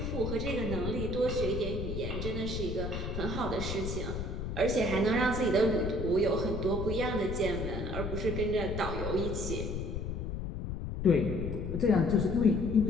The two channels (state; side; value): noise; left; rumble, 4 dB below the sound